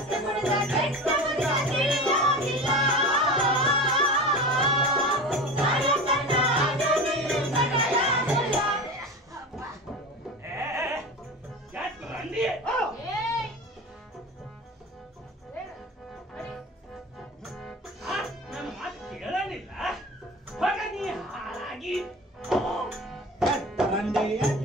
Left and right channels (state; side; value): normal; both; correlation 0.31